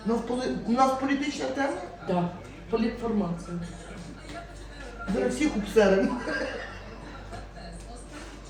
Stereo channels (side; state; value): both; identical; correlation 1.00